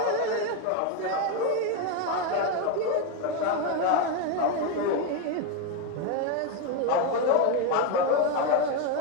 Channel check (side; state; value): both; different; correlation 0.02